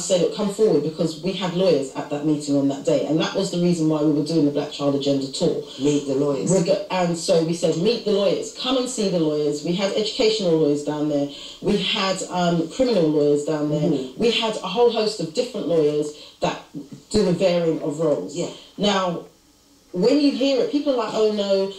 say, look, come forward, because we had lawyers at that meeting on that day, and that was the reason why we were doing the Black Child Agenda tour. Meet the lawyers. And so we said, meet the lawyers, come and see the lawyers. We had educational lawyers down there. We had criminal lawyers down there. We had a whole host of different lawyers that do a varying of roles. Now, when you hear it, people are like, oh no,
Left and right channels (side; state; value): both; identical; correlation 1.00